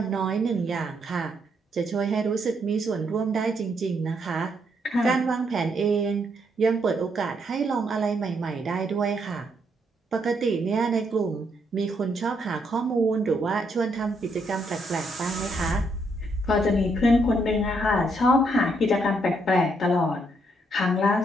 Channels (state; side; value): normal; both; correlation 0.74